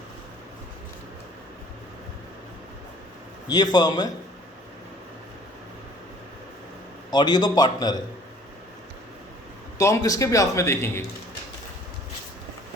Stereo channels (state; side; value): normal; both; correlation 0.54